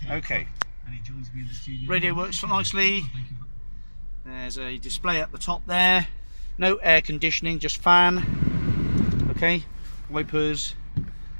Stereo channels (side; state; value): both; inverted; correlation -1.00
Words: Okay. Radio works nicely. There's a display at the top there. No air conditioning, just fan. Okay. Wipers.